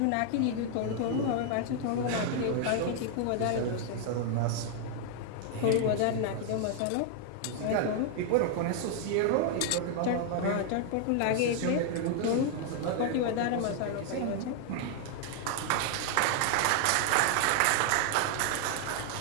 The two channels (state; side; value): different; both; correlation 0.00